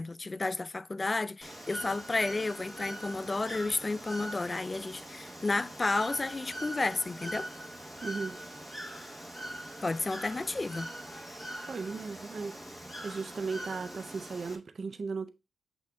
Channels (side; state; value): both; normal; correlation 0.95